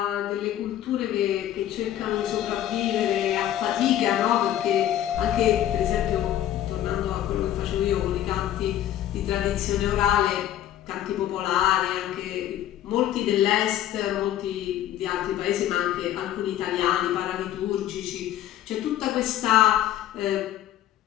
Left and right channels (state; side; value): quieter; right; 12.0 dB